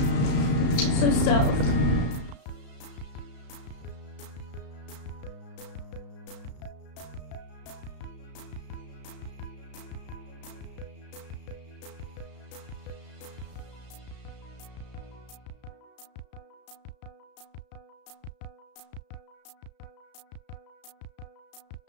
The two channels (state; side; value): late; right; 34 ms